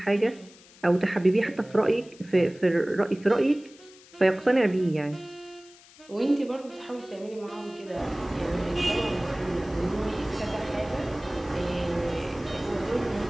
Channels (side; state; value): left; noise; hiss, 24 dB below the sound